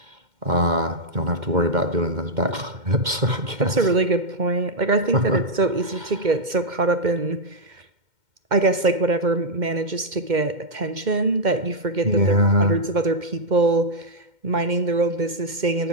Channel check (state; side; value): late; left; 2.1 ms